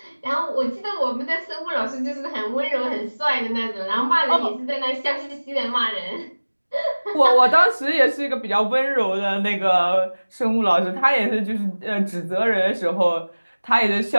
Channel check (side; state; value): both; inverted; correlation -1.00